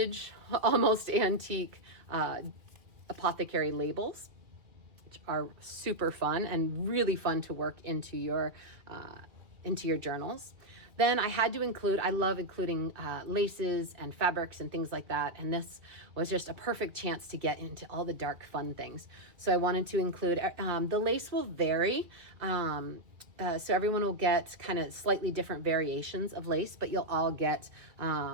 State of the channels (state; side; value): late; left; 2.6 ms